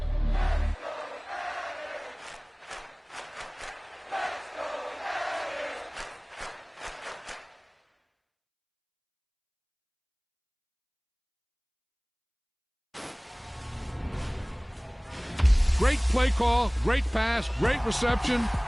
Great play call, great pass, great reception.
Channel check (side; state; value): both; identical; correlation 1.00